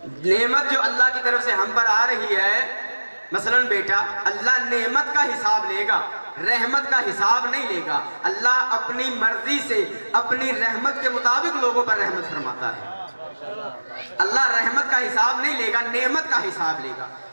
نعمت جو اللہ کی طرف سے ہم پر آ رہی ہے، مثلا بیٹا، اللہ نعمت کا حساب لے گا، رحمت کا حساب نہیں لے گا۔ اللہ اپنی مرضی سے اپنی رحمت کے مطابق لوگوں پر رحمت فرماتا ہے۔ اللہ رحمت کا حساب نہیں لے گا، نعمت کا حساب لے گا۔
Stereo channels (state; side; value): inverted; both; correlation -1.00